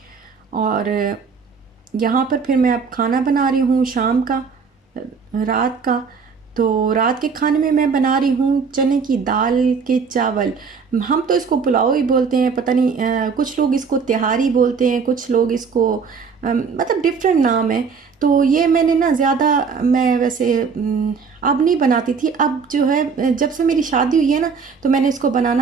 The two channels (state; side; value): quieter; left; 5.6 dB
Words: और यहाँ पर फिर मैं अब खाना बना रही हूँ शाम का, रात का। तो रात के खाने में मैं बना रही हूँ चने की दाल के चावल। हम तो इसको पुलाव ही बोलते हैं, पता नहीं कुछ लोग इसको तिहारी बोलते हैं, कुछ लोग इसको मतलब डिफरेंट नाम है। तो ये मैंने ना ज़्यादा मैं वैसे अब नहीं बनाती थी, अब जो है जब से मेरी शादी हुई है ना तो मैंने इसको